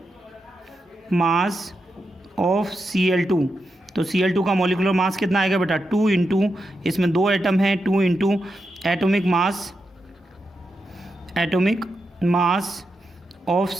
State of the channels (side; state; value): both; normal; correlation 0.86